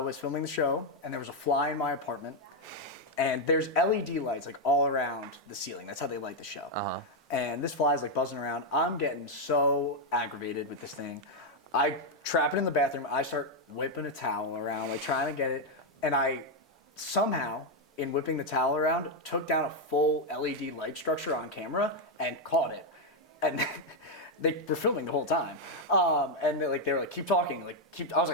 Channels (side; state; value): both; normal; correlation 0.02